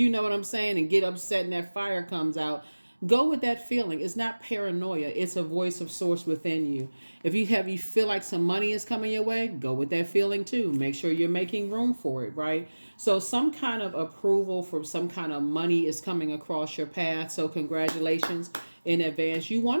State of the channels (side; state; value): both; inverted; correlation -1.00